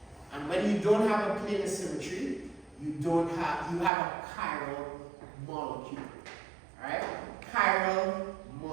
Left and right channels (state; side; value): drops out; left; at 3.9 s